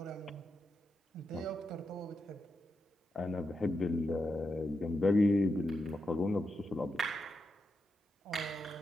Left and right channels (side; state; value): both; normal; correlation 0.86